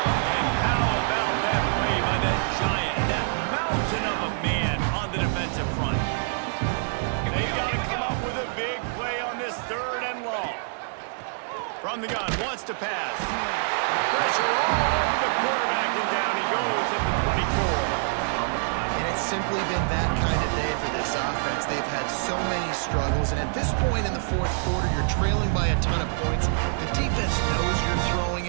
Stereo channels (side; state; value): left; silent; digital silence